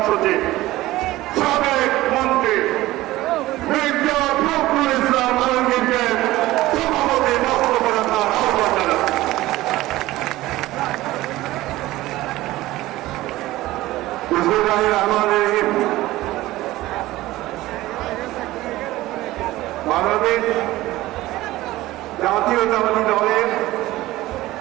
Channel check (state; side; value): quieter; left; 17.2 dB